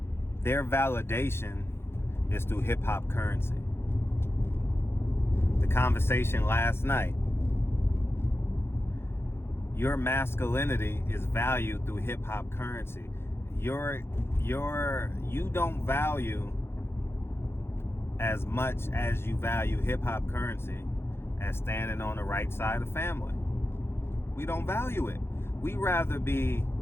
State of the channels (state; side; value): late; right; 0.12 ms